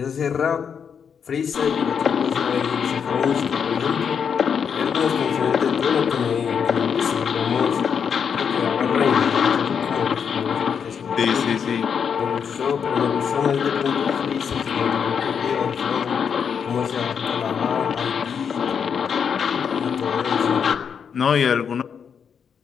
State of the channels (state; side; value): quieter; right; 7.1 dB